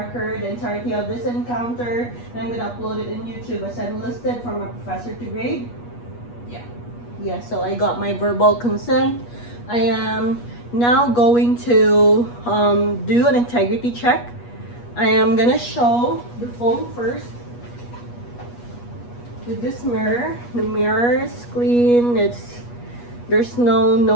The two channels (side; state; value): right; late; 8.3 ms